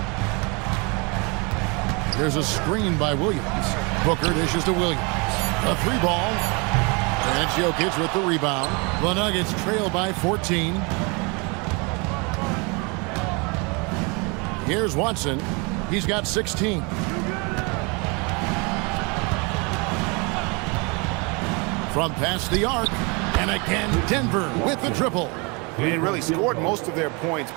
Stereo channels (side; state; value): left; quieter; 30.2 dB